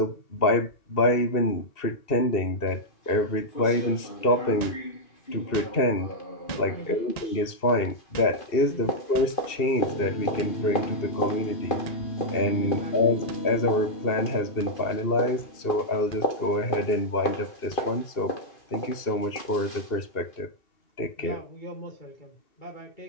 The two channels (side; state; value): right; late; 2.7 ms